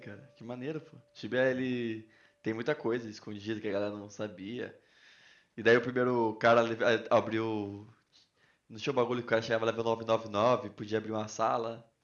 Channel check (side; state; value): both; identical; correlation 1.00